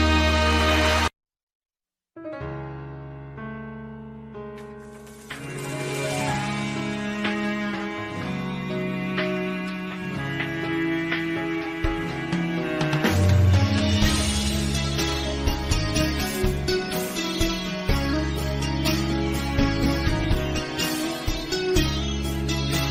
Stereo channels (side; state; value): both; identical; correlation 1.00